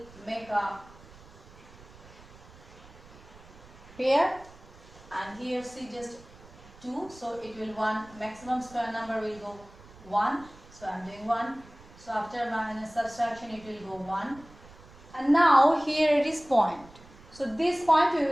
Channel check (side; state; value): right; noise; rumble, 22 dB below the sound